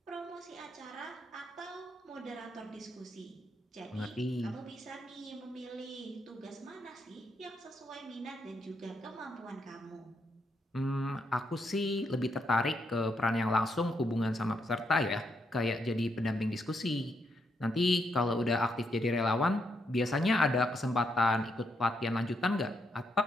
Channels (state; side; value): normal; both; correlation 0.79